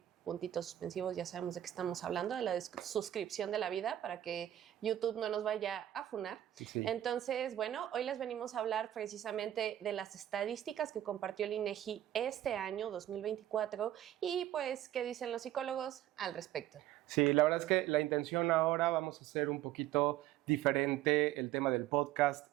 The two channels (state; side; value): quieter; left; 12.7 dB